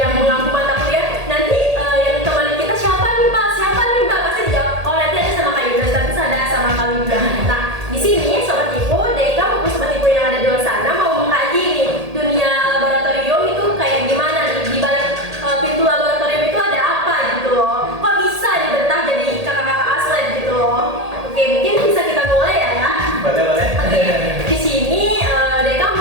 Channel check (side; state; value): left; late; 1.8 ms